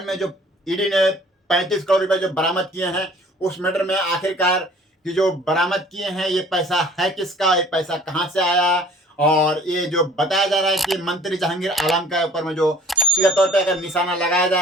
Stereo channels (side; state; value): both; normal; correlation 0.51